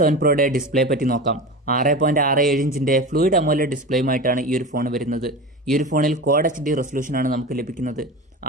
7 Proയുടെ ഡിസ്പ്ലേ പറ്റി നോക്കാം. 6.67 ഇഞ്ചിന്റെ ഫ്ലൂയിഡ് അമോലെഡ് ഡിസ്പ്ലേയുമായിട്ടാണ് ഈ ഒരു ഫോൺ വരുന്നത്. ഈ ഒരു ഫോണിൽ ക്വാഡ് HD റെസൊല്യൂഷനാണ് നമുക്ക് ലഭിക്കുന്നത്.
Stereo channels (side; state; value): both; normal; correlation 0.29